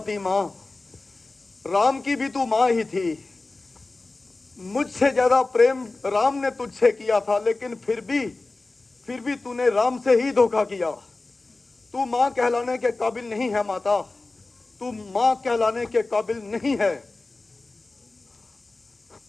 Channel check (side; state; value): right; quieter; 3.3 dB